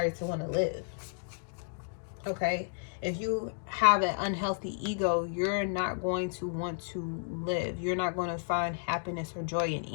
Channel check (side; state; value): right; silent; digital silence